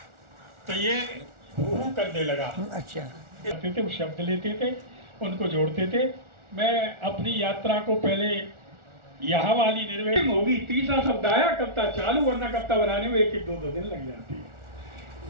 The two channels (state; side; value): late; left; 1.4 ms